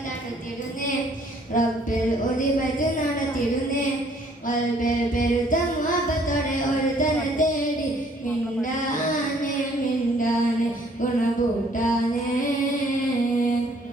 തടുത്തിടുന്നേ റബ്ബിൽ ഒലിപത് നടത്തിടുന്നേ വൽബിൽ പെരുത്ത മുഹബത്തോടെ ഒരു തന തേടി മിണ്ടാനെ മിണ്ടാനെ ഗുണകൂട്ടാനെ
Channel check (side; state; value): both; normal; correlation 0.61